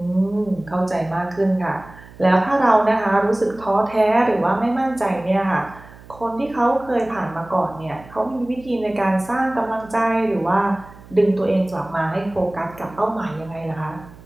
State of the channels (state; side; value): noise; right; hum, 21 dB below the sound